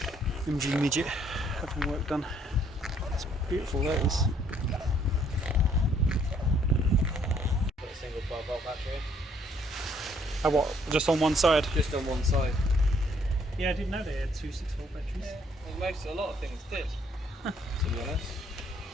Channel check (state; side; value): normal; both; correlation 0.65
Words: MG Midget having work done. It's beautiful, that is. Got a single 12-volt battery. Oh, what? Just on one side? Just on one side. Yeah, I didn't know they had two 6-volt batteries. Well, a lot of things did, to be honest.